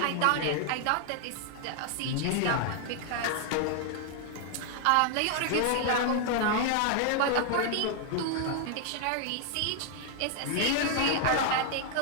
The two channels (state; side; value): different; both; correlation 0.00